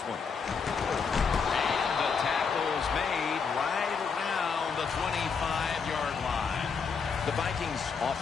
one. And the tackle's made right around the 25-yard line. The Vikings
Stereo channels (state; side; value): quieter; right; 5.7 dB